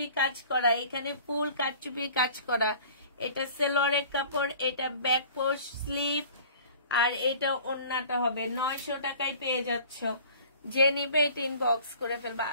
কাজ করা, এখানে ফুল কাটচুপি কাজ করা। এটা সেলোয়ারের কাপড়, এটা ব্যাক পোস্ট স্লিপ, আর এটা ওড়নাটা হবে। 900 টাকায় পেয়ে যাচ্ছ। যে নিবে এটা ইনবক্স করে ফেলবা।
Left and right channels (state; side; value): inverted; both; correlation -0.47